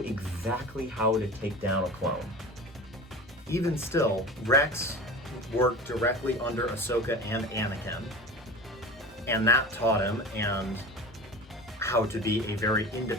exactly how to take down a clone. Even still, Rex worked directly under Ahsoka and Anakin, and that taught him and how to be a very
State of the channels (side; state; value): both; normal; correlation 0.34